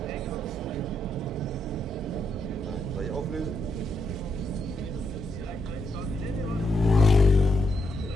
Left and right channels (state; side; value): normal; both; correlation 0.80